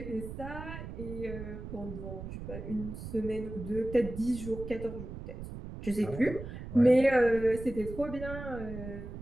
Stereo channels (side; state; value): right; noise; rumble, 9 dB below the sound